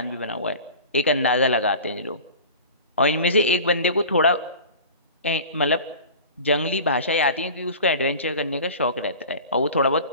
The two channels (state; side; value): inverted; both; correlation -0.38